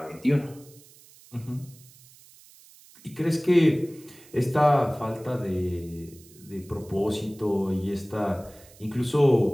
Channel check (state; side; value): noise; right; hiss, 24 dB below the sound